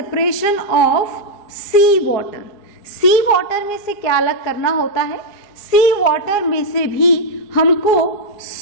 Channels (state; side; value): late; right; 4.9 ms